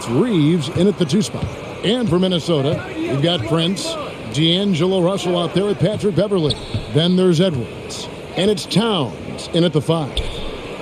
Reeves in at the 2 spot. And for Minnesota, we've got Prince, D'Angelo Russell out there with Patrick Beverley. Then there's Edwards. And it's Towns in at the 5.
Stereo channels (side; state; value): both; identical; correlation 1.00